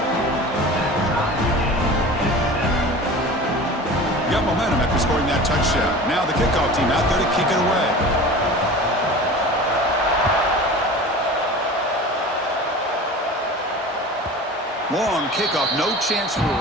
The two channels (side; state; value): both; normal; correlation 0.36